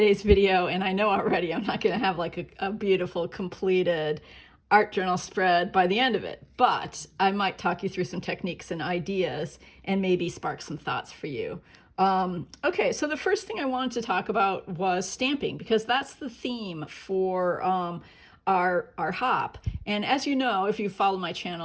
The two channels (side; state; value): both; identical; correlation 1.00